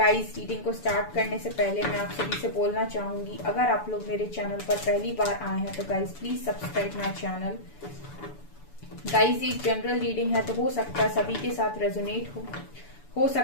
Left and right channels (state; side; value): late; right; 6.9 ms